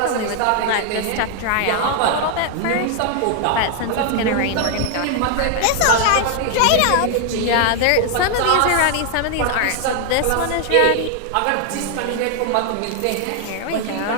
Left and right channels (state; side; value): different; both; correlation 0.00